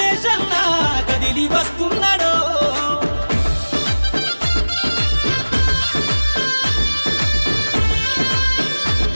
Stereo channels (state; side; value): inverted; both; correlation -1.00